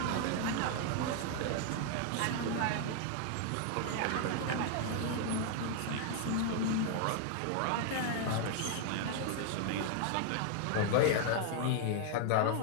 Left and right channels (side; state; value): both; different; correlation 0.00